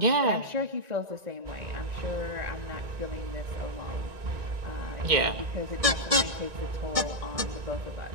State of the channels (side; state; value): left; late; 1.9 ms